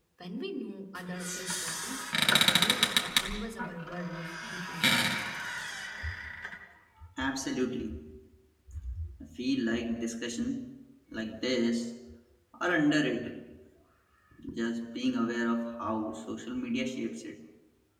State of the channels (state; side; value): identical; both; correlation 1.00